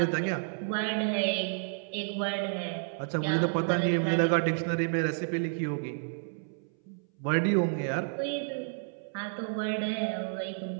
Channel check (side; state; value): left; silent; 57 dB below the other